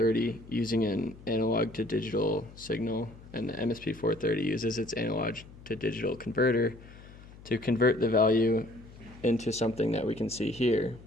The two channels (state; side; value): noise; left; hum, 19 dB below the sound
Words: using an analog to digital signal, and the MSP430 uses its analog to digital converter to convert the value into something that we can see here.